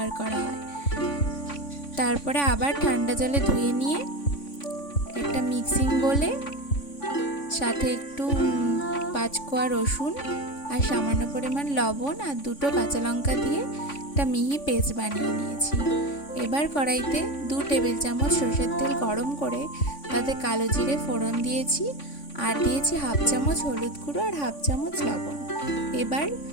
করা হয়। তারপরে আবার ঠান্ডা জলে ধুয়ে নিয়ে একটা মিক্সিং বোলে সাথে একটু 5 কোয়া রসুন আর সামান্য পরিমাণ লবণ আর 2টো কাঁচা লঙ্কা দিয়ে একটা মিহি পেস্ট বানিয়ে নিয়েছি। এবার কড়াইতে 2 টেবিল চামচ সরষের তেল গরম করে তাতে কালো জিরে ফোড়ন দিয়েছি, আর দিয়েছি হাফ চামচ হলুদ গুঁড়ো আর হাফ চামচ লবণ। এবার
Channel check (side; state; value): right; late; 3.5 ms